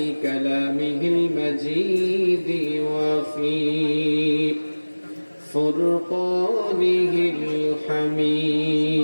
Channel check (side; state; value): both; inverted; correlation -1.00